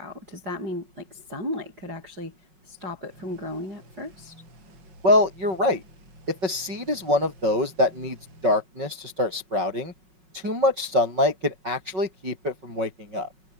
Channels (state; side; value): late; left; 5.4 ms